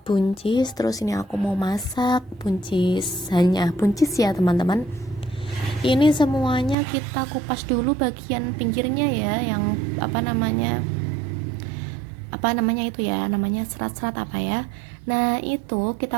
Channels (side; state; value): left; drops out; at 6.8 s